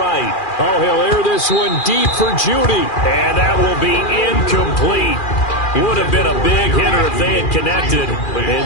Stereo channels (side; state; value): right; late; 2.4 ms